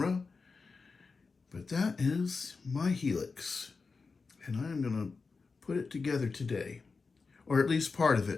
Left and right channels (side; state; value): right; quieter; 4.5 dB